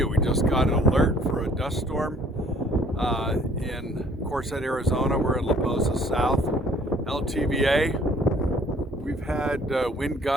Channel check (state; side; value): normal; both; correlation 0.58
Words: We just got an alert for a dust storm in Quartzsite, Arizona. We're in La Posa South, LTVA. We've had wind